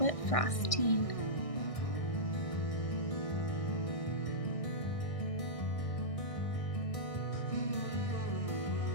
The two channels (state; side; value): late; right; 1.6 ms